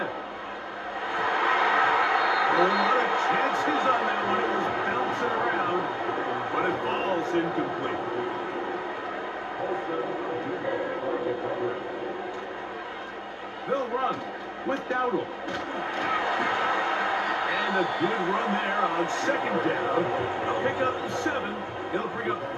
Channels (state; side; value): identical; both; correlation 1.00